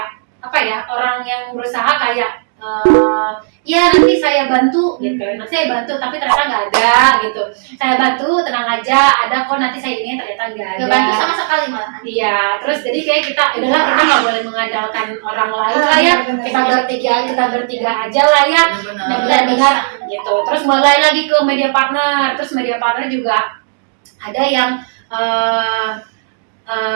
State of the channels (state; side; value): silent; left; digital silence